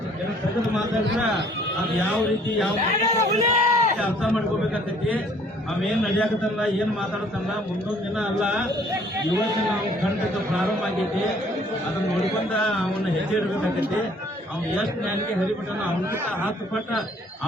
ತೆಗೆದು ಮಾತಾಡಿದ್ರ ಅದು ಯಾವ ರೀತಿ ಯಾವ ಅರ್ಥ ಮಾಡ್ಕೋಬೇಕಾಗ್ತೈತಿ. ಅವೇನ್ ನಡೆಯಾಕತ್ತಲ್ಲ ಏನ್ ಮಾತಾಡತ್ತಲ್ಲ ಮುಂದೊಂದು ದಿನ ಅಲ್ಲ ಇವತ್ತು ನಾವು ಖಂಡಿತ ಪ್ರಾರಂಭ ಆಗೈತಿ. ಅದನ್ನ ನೋಡ್ಕೊಂಡ ಅವನ್ನ ಹೆಜ್ಜೆ ಇಡ್ಬೇಕಾಗೈತಿ. ಅವ್ನು ಎಷ್ಟು ನ್ಯಾಯಕ್ಕೆ ಹರಿಬಿಟ್ಟನ ಅವನಕಿಂತ 10 ಪಟ್ಟ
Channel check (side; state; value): both; normal; correlation 0.59